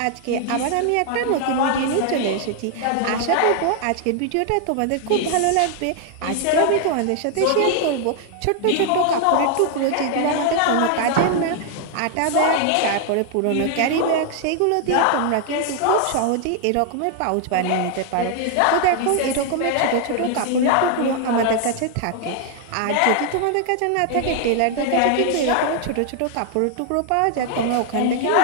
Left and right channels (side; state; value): both; different; correlation 0.00